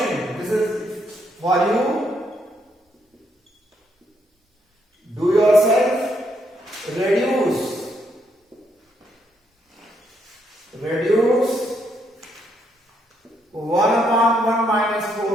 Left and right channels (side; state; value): both; normal; correlation 0.75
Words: this is for you. Do yourself reduce 1 upon 1 minus